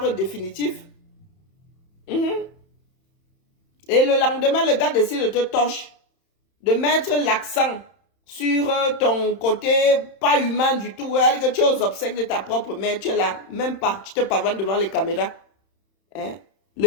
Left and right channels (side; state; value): right; late; 31 ms